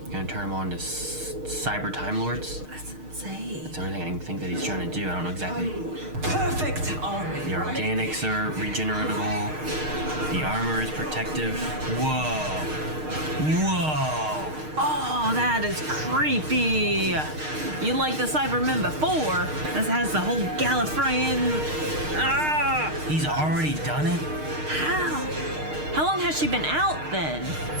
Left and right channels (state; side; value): late; left; 6.5 ms